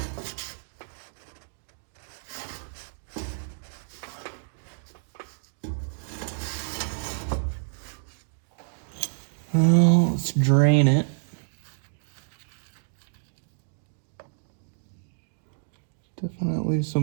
Well, let's drain it. Definitely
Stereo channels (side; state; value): left; silent; digital silence